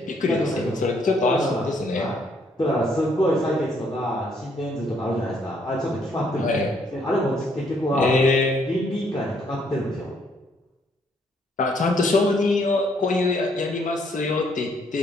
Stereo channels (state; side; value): normal; both; correlation 0.69